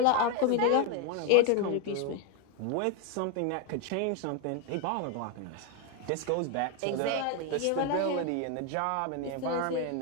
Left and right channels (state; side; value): different; both; correlation 0.01